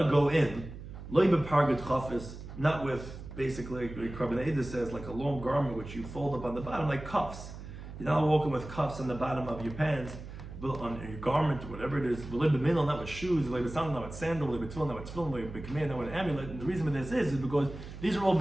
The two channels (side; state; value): right; noise; hum, 12 dB below the sound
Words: to go in, Loi Bepargat Chafis, not with, basically, Rabbi Eda says, like a long garment which you fold up on the bottom, like cuffs. You're not walking with cuffs on the bottom of your pants, on your garment, or whatever it is, not with shoes, not with sandal, not with tefillin, not with amulet. And the reason for this is because these are all